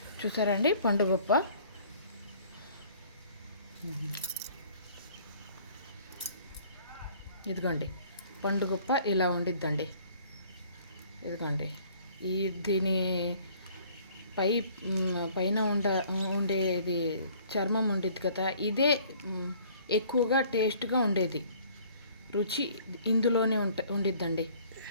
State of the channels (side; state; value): both; inverted; correlation -0.55